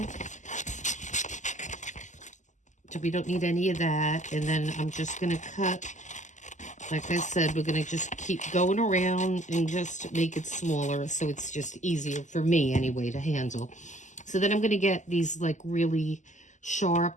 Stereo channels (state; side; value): late; right; 0.35 ms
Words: So we don't need any of that. And then I'm just gonna cut, like I said, we're gonna just keep going around and just make it smaller so it's just easier for me anyway to handle. So then I'm gonna get these like really